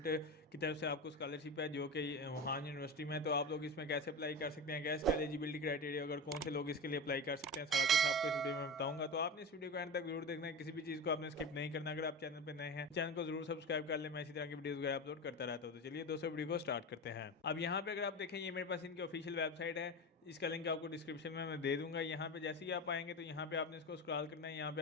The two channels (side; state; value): both; normal; correlation 0.25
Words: की तरफ से आपको स्कॉलरशिप है जो कि वुहान यूनिवर्सिटी में है। तो आप लोग इसमें कैसे अप्लाई कर सकते हैं, क्या इसका एलिजिबिलिटी क्राइटेरिया, अगर कौन से लोग इसके लिए अप्लाई कर सकते हैं, सारा कुछ आपको इस वीडियो में बताऊंगा। तो आपने इस वीडियो को एंड तक जरूर देखना है, किसी भी चीज़ को आपने स्किप नहीं करना। अगर आप चैनल पर नए हैं, चैनल को जरूर सब्सक्राइब कर ले, मैं इसी तरह की वीडियो वगैरह अपलोड करता रहता हूँ। तो चलिए दोस्तों वीडियो को स्टार्ट करते हैं। अब यहाँ पे अगर आप देखें, ये मेरे पास इनकी ऑफिशियल वेबसाइट है, इसका लिंक आपको डिस्क्रिप्शन में मैं दे दूंगा। यहाँ पे जैसे ही आप आएंगे तो यहाँ पे आपने इसको स्क्रॉल करना है। यहाँ पे